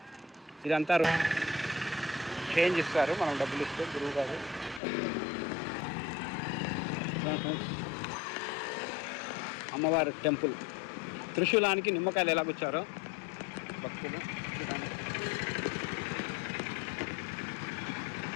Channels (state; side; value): drops out; right; at 4.8 s